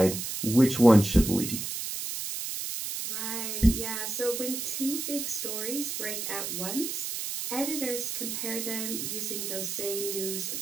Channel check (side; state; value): right; noise; hiss, 4 dB below the sound